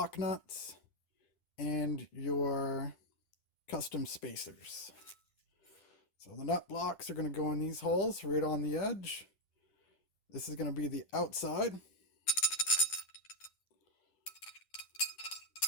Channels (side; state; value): right; late; 10 ms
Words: nuts, and your custom spacers. So the nut blocks are going to go in these holes right on the edge. This is going to be the outside.